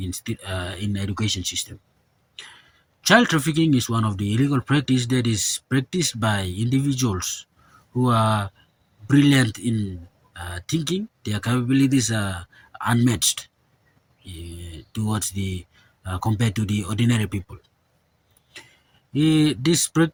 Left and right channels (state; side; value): identical; both; correlation 1.00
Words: education system. Child trafficking is one of the illegal practice that is practiced by individuals who are brilliant in thinking. Their capabilities are unmatched towards the compared to the ordinary people. This